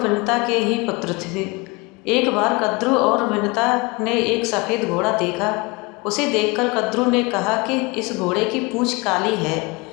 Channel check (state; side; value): quieter; right; 25.9 dB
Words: के ही पुत्र थे। एक बार कद्रु और विनता ने एक सफ़ेद घोड़ा देखा। उसे देखकर कद्रु ने कहा कि इस घोड़े की पूँछ काली है,